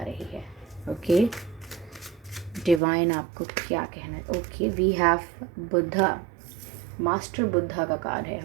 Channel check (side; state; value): left; drops out; at 2.8 s